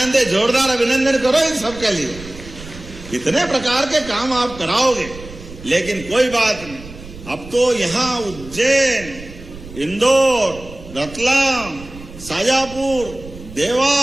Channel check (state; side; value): noise; right; rumble, 16 dB below the sound